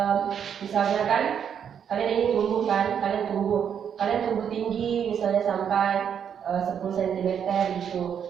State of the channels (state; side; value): quieter; left; 8.1 dB